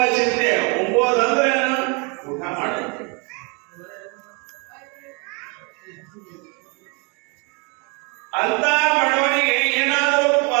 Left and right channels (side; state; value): left; quieter; 32.2 dB